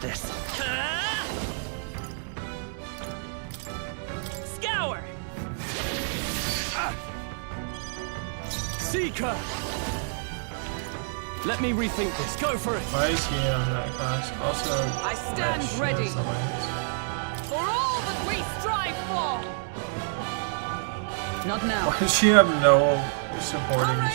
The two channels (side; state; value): left; silent; digital silence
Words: this. Scour! Seeker! Let me rethink this. Go for it! Why is he on that class? Also, I stand that ready. shields the lance. For all that we strive for! Not now. Why does she have no supporting